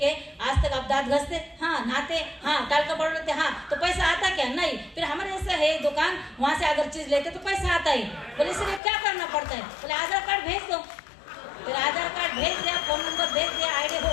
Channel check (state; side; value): drops out; right; at 8.8 s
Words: आज तक आप दांत घसते, हाँ नहाते, हाँ टाल का पाउडर लेते, हाँ तो पैसा आता क्या, नहीं। फिर हमारे ऐसा है दुकान, वहां से अगर चीज लेते तो पैसा आता ही। बोले इसलिए क्या करना पड़ता है, बोले आधार कार्ड भेज दो। फिर आधार कार्ड भेज दिया, फोन नंबर भेज दिया, आईडी